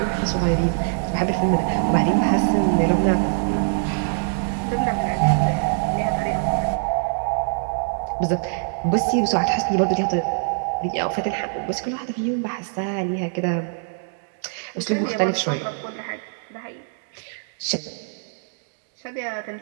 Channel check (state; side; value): silent; left; digital silence